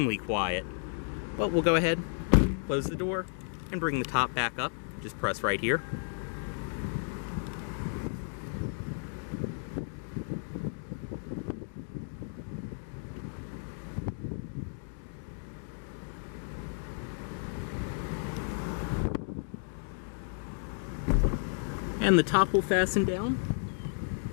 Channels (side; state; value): right; silent; digital silence